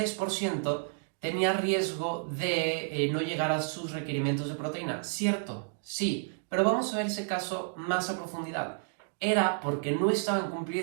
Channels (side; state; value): left; silent; digital silence